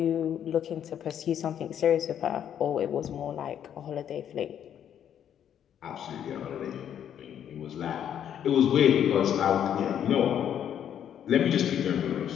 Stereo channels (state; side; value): quieter; right; 9.5 dB